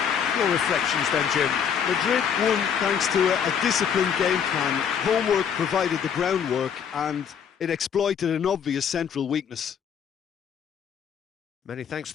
Your reflections then, Jim? Madrid won thanks to a disciplined game plan. Homework provided the groundwork, and it exploited an obvious central weakness. Many thanks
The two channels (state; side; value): quieter; right; 7.7 dB